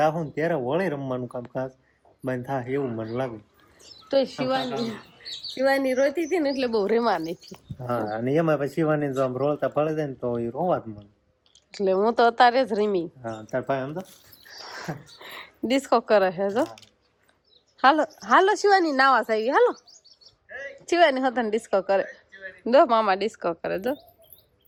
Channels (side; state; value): both; identical; correlation 1.00